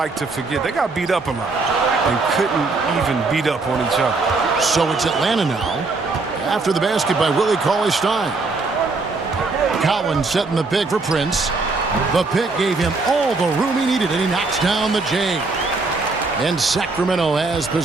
to forget. They got beat up a lot and couldn't even beat up on each other. So it's Atlanta now. After the basket by Willie Cauley-Stein. Collins setting the pick for Prince. The pick gave him all the room he needed, and he knocks down the J. And Sacramento has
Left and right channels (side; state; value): left; quieter; 3.8 dB